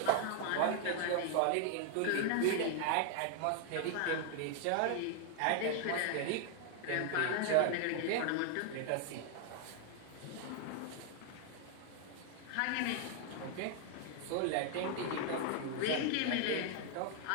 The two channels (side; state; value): both; different; correlation 0.00